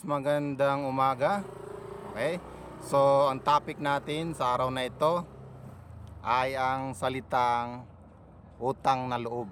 magandang umaga. Okay? So, ang topic natin sa araw na ito ay ang salitang utang na loob.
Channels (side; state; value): both; identical; correlation 1.00